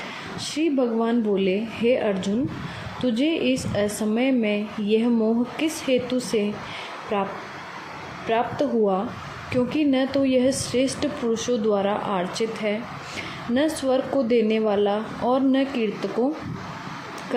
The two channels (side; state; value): both; identical; correlation 1.00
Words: श्री भगवान बोले, हे अर्जुन, तुझे इस असमय में यह मोह किस हेतु से प्राप्त हुआ? क्योंकि न तो यह श्रेष्ठ पुरुषों द्वारा आर्चित है, न स्वर्ग को देने वाला और न कीर्ति को